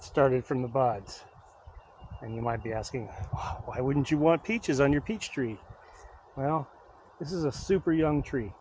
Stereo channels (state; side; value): identical; both; correlation 1.00